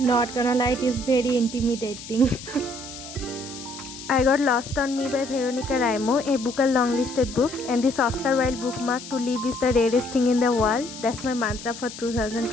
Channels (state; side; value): noise; left; hiss, 13 dB below the sound